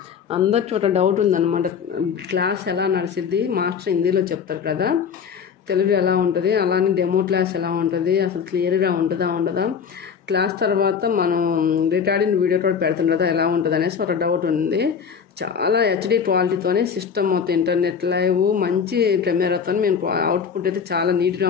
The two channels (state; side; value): quieter; right; 6.8 dB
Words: అందరి చోట డౌట్ ఉందన్నమాట. క్లాస్ ఎలా నడిచిద్ది, మాస్టర్ హిందీలో చెప్తారు కదా, తెలుగు ఎలా ఉంటుంది, అలానే డెమో క్లాస్ ఎలా ఉంటుంది, అసలు క్లియర్గా ఉంటుందా ఉండదా, క్లాస్ తర్వాత మనం రికార్డింగ్ వీడియో కూడా పెడుతుంది కదా ఎలా ఉంటుంది అనేసి ఒక డౌట్ ఉంది. చాలా హెచ్డి క్వాలిటీతోనే సిస్టమ్ మొత్తం ఇంటర్నెట్ లైవ్ మంచి కెమెరాతో మేము అవుట్పుట్ అయితే చాలా నీట్గా